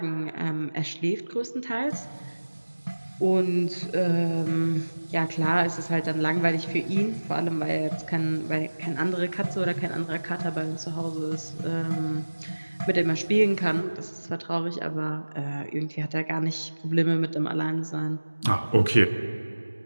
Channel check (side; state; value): both; inverted; correlation -1.00